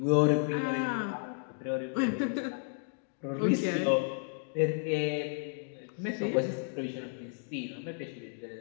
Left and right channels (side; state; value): right; silent; 56 dB below the other